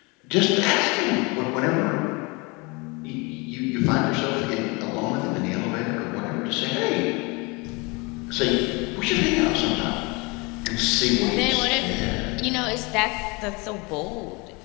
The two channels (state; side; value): quieter; right; 27.6 dB